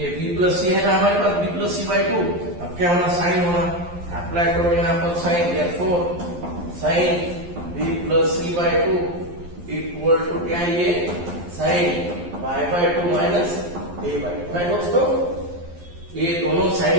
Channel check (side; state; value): left; late; 11 ms